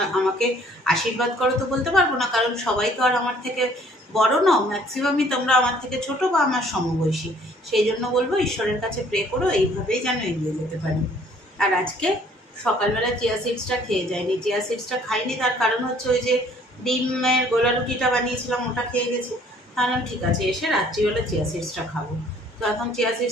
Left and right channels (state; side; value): normal; both; correlation 0.58